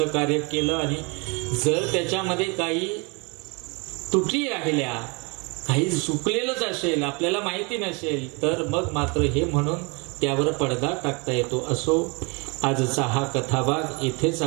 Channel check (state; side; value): quieter; left; 30.3 dB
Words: कार्य केलं आणि जर त्याच्यामध्ये काही त्रुटी राहिल्या, काही चुकलेलंच असेल, आपल्याला माहिती नसेल, तर मग मात्र हे म्हणून त्यावर पडदा टाकता येतो. असो, आजचा हा कथाभाग इथेच